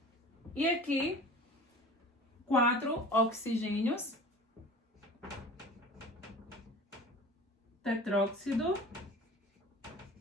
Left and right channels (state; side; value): normal; both; correlation 0.40